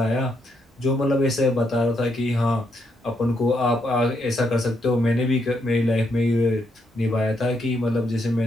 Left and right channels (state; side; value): normal; both; correlation 0.78